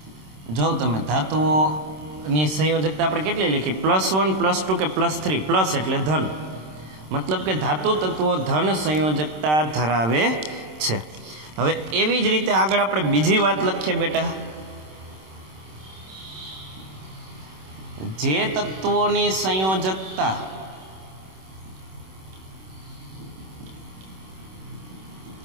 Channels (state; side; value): late; left; 26 ms